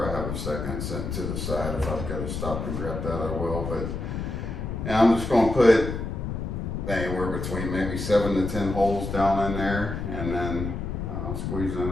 I have a second sent to the side. If I've got to stop and grab that, I will. But, and I'm just going to put anywhere between maybe 7 to 10 holes down in there, and then I'll squeeze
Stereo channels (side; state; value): left; noise; rumble, 4 dB below the sound